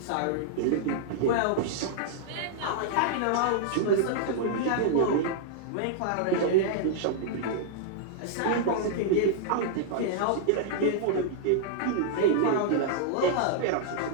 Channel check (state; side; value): different; both; correlation -0.01